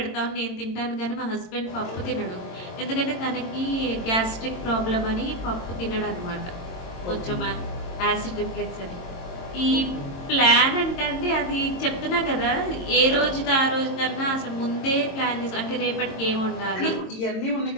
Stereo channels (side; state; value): right; late; 22 ms